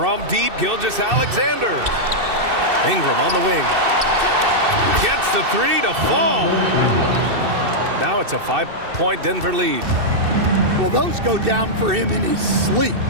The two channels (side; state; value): left; late; 2.6 ms